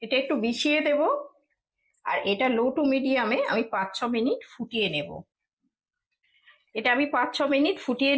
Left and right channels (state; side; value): identical; both; correlation 1.00